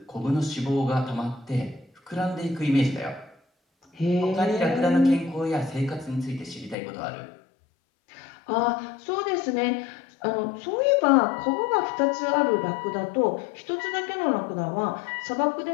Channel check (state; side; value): drops out; right; at 6.8 s